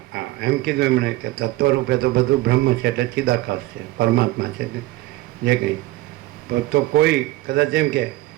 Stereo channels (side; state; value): left; quieter; 18.2 dB